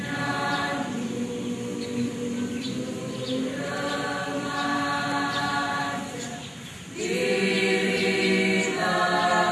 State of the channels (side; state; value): both; identical; correlation 1.00